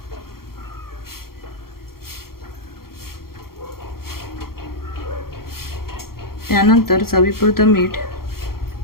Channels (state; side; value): late; right; 0.93 ms